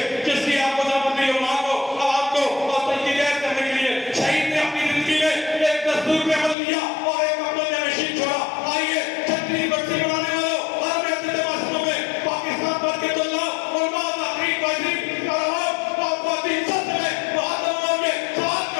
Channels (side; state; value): right; drops out; at 6.6 s